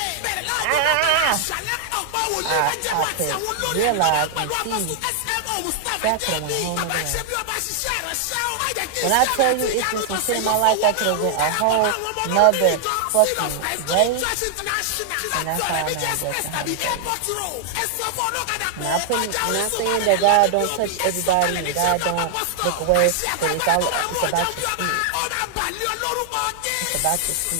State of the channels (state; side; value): different; both; correlation 0.00